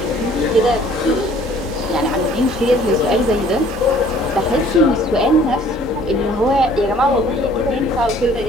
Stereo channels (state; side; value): normal; both; correlation 0.56